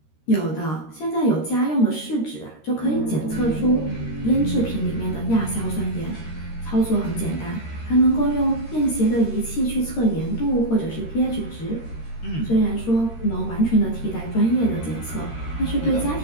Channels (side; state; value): right; late; 13 ms